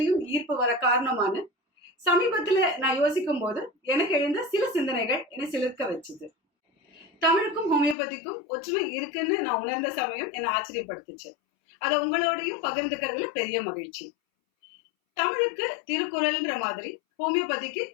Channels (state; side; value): drops out; right; at 8.0 s